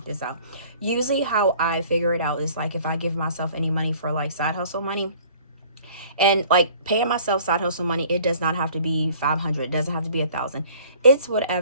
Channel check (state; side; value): inverted; both; correlation -0.52